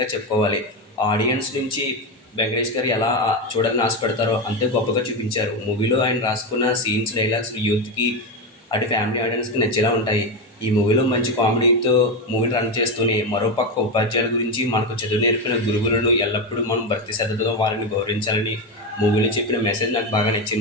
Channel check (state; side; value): normal; both; correlation 0.13